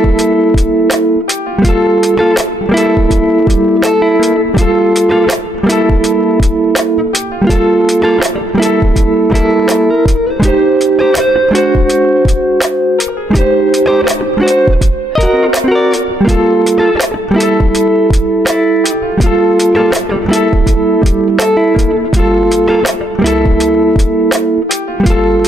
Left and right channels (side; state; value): both; normal; correlation 0.80